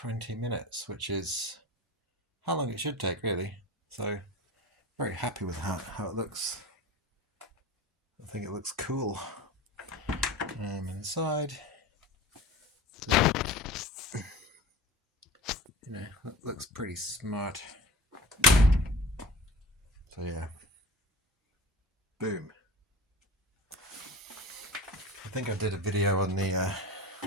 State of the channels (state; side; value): normal; both; correlation 0.35